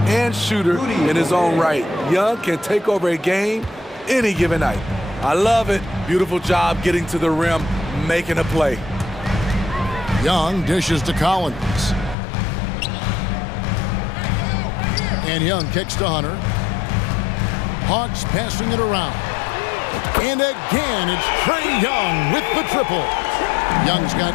shooter in his own right. Young can take over a game any given night. I love it. Beautiful job getting to the rim, making a play. Young dishes to Collins. And Young kicks to Hunter. Hawks passing it around. And again, it's Trae Young with the triple. Young's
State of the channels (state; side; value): drops out; right; at 12.2 s